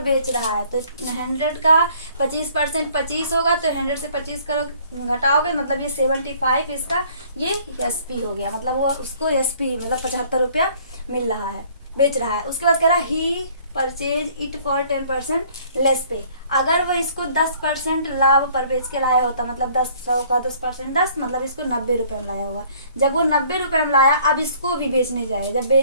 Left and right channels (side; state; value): both; inverted; correlation -0.57